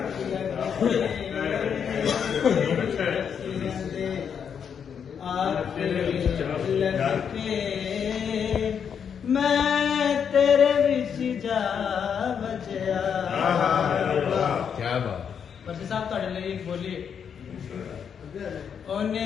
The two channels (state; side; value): quieter; right; 7.4 dB